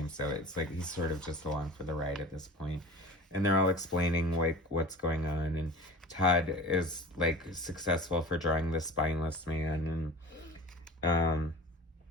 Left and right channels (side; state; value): both; normal; correlation 0.38